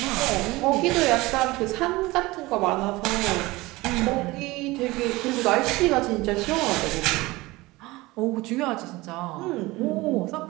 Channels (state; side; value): quieter; left; 20.7 dB